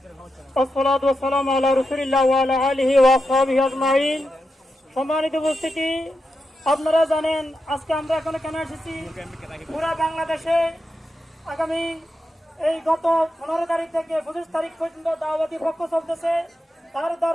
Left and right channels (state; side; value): normal; both; correlation 0.87